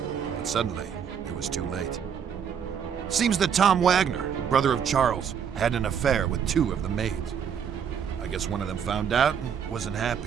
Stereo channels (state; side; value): quieter; left; 7.7 dB